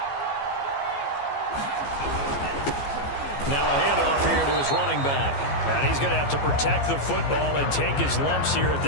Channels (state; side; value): late; right; 14 ms